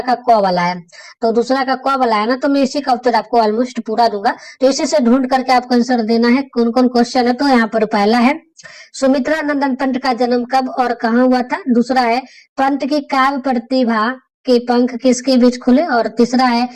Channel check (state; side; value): identical; both; correlation 1.00